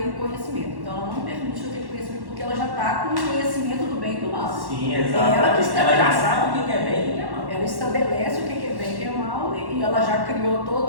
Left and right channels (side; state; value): left; late; 1.1 ms